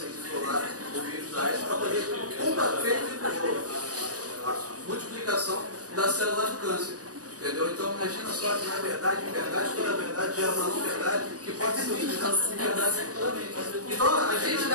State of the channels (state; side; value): late; left; 0.67 ms